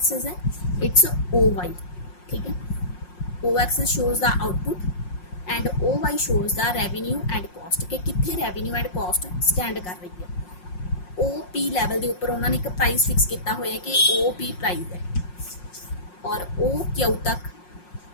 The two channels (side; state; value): right; late; 5.6 ms